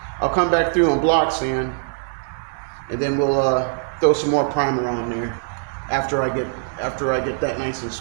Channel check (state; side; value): silent; left; 64 dB below the other